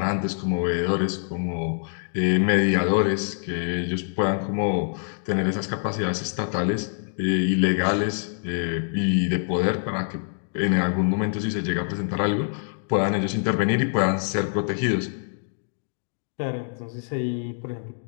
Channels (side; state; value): right; silent; digital silence